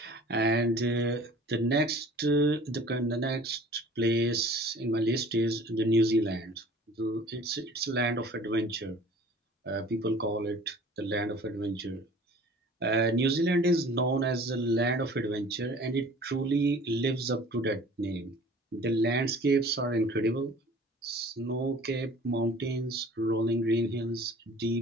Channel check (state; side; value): normal; both; correlation 0.48